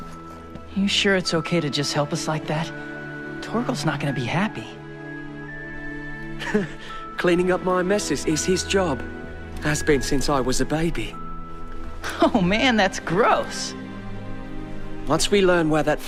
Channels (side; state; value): both; identical; correlation 1.00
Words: You sure it's okay to just help us like that? Torgal's not gonna be happy. Cleaning up my messes is his job. Has been since I was a baby. Oh man, that's gross. Once we learn where that